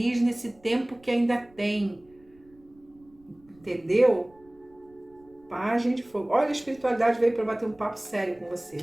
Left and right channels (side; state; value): right; noise; rumble, 30 dB below the sound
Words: nesse tempo que ainda tem. Entendeu? Pagem de fogo. Olha, a espiritualidade veio para bater um papo sério com você,